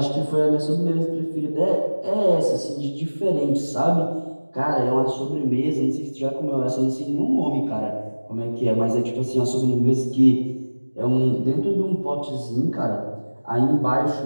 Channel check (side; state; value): both; inverted; correlation -1.00